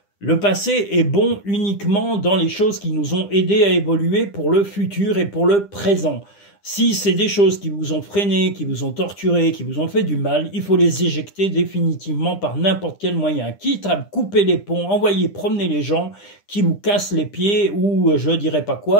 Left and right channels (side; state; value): right; late; 9.9 ms